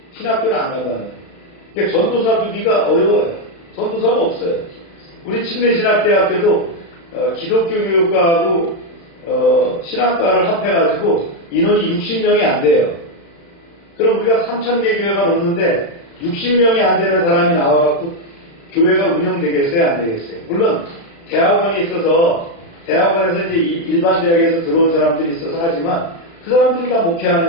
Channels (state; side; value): late; right; 36 ms